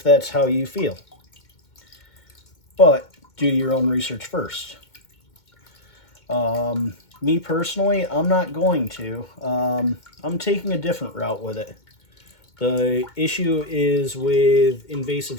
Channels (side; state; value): right; late; 2.2 ms